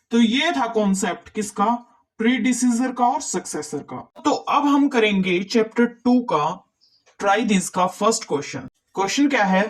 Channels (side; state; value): both; identical; correlation 1.00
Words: तो ये था कॉन्सेप्ट किसका? प्रीडिसीजर का और सक्सेसर का। तो अब हम करेंगे चैप्टर 2 का ट्राई दिस का फर्स्ट क्वेश्चन। क्वेश्चन क्या है?